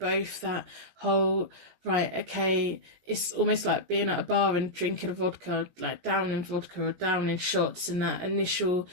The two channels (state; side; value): late; left; 17 ms